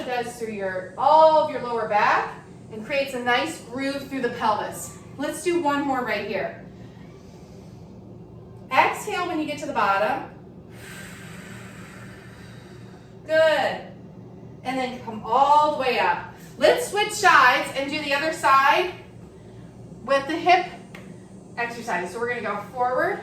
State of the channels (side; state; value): both; identical; correlation 1.00